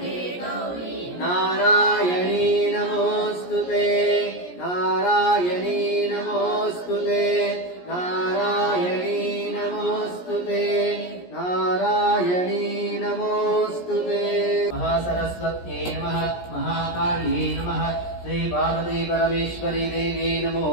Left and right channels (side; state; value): right; late; 17 ms